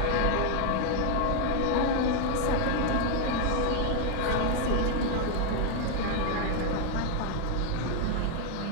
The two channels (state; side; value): different; both; correlation 0.00